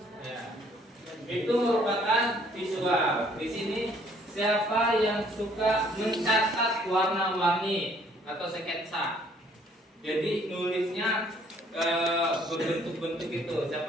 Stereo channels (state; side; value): normal; both; correlation 0.62